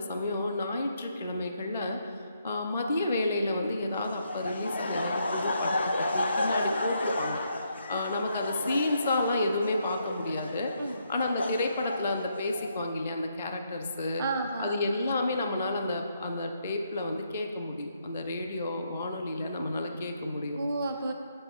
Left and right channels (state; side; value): inverted; both; correlation -0.76